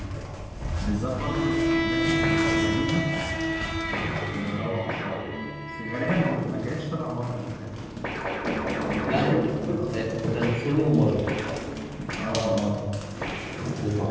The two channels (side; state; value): both; identical; correlation 1.00